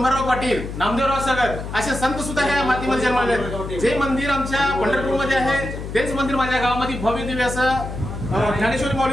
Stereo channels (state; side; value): noise; left; hum, 8 dB below the sound